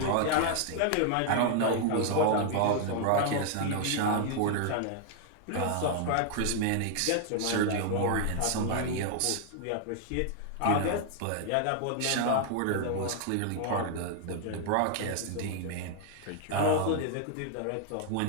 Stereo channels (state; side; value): different; both; correlation 0.00